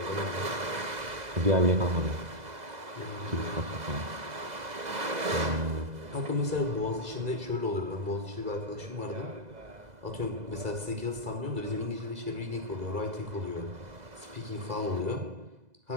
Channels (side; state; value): left; late; 2.0 ms